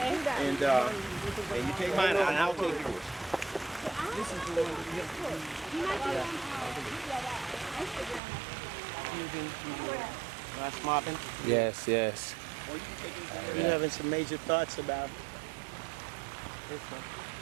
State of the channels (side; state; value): left; drops out; at 8.2 s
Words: And you take mine and I'll take yours. This is the one Last mopping. Yes, yes. We're having some major thoughts about this one.